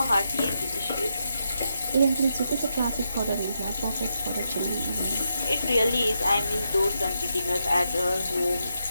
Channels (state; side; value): inverted; both; correlation -0.83